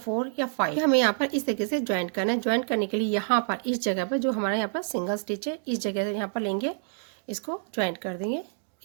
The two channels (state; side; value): silent; left; digital silence